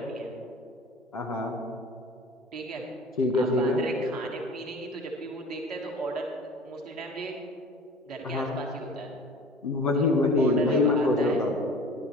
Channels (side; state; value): both; normal; correlation 0.42